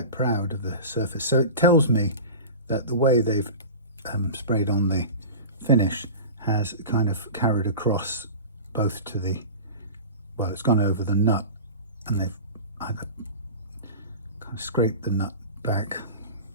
proud of the surface. So it tells me that the way they've sprayed on the finish has kind of carried across both to the, well, it's gone over the nut, and they've either kind of scraped the nut back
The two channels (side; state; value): both; inverted; correlation -0.32